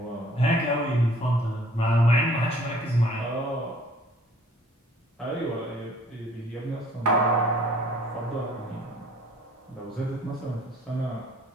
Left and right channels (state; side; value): normal; both; correlation 0.55